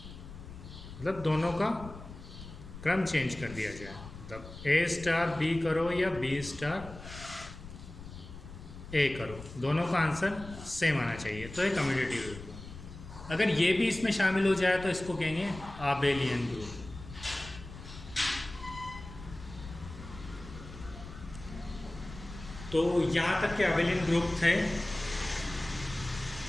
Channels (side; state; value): left; noise; rumble, 14 dB below the sound